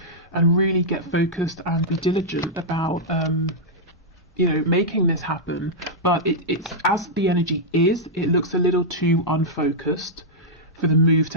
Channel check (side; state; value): both; normal; correlation -0.08